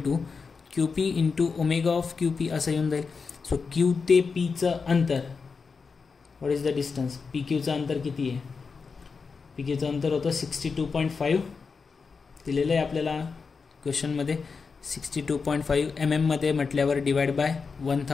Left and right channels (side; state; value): right; quieter; 5.0 dB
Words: to QP into omega of QP असं येऊन जाईल. सो Q ते Pचं अंतर, व्हॉट इज द डिस्टन्स, PQचं अंतर किती आहे. PQचं अंतर होतं 62.5 दिलेलं आहे आपल्याला क्वेश्चनमध्ये. 62.5 mm मध्ये म्हटल्यावर divide by